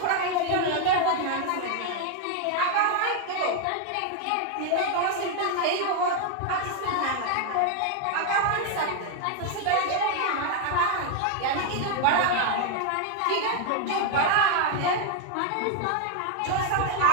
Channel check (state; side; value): different; both; correlation 0.01